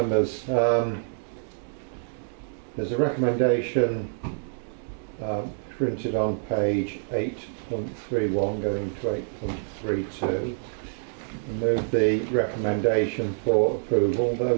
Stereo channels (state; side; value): silent; left; digital silence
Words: there's a recommendation printed on page 8.31 going to 8.32. Move the recommendation for approval.